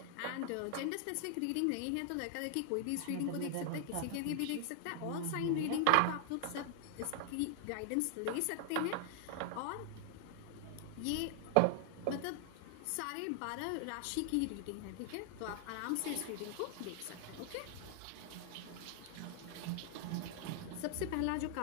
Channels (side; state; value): both; different; correlation 0.00